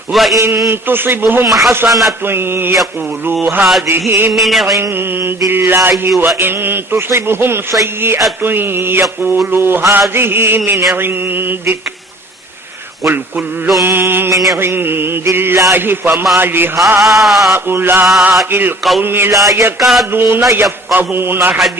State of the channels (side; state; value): both; normal; correlation 0.49